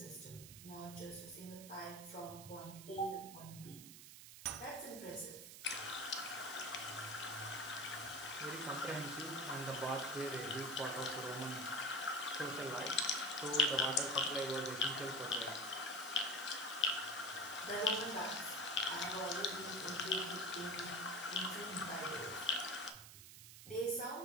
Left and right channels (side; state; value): right; noise; hiss, 14 dB below the sound